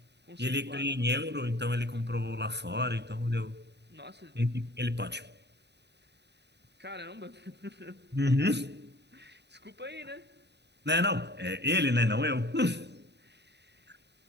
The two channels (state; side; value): late; left; 0.50 ms